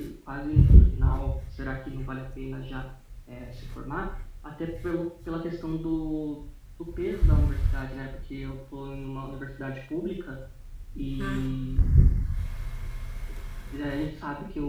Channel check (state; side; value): identical; both; correlation 1.00